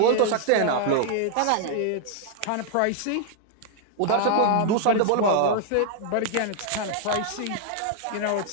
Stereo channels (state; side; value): different; both; correlation 0.00